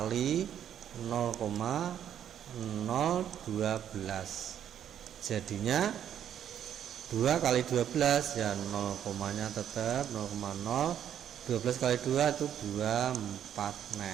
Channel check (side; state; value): left; quieter; 9.8 dB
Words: 0,012. Jadinya 2 kali 12 ya 0 komanya tetap 0,0. 12 kali 2 itu 24